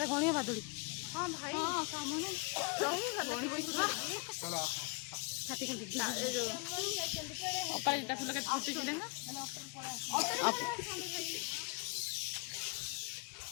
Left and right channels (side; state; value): right; quieter; 29.6 dB